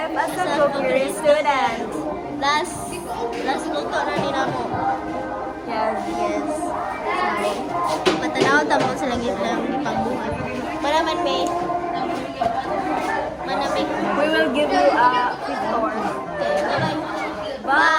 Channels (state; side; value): identical; both; correlation 1.00